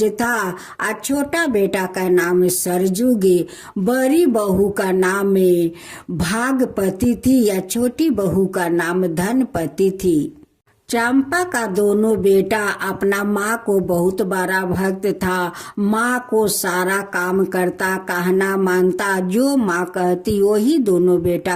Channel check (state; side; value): identical; both; correlation 1.00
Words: था और छोटा बेटा का नाम सरजुगे। बड़ी बहू का नाम भागपति थी या छोटी बहू का नाम धनपति थी। चंपा का दोनों बेटा अपना माँ को बहुत बड़ा भक्त था। माँ को सारा काम करता, कहना मानता, जो माँ कहती वही दोनों बेटा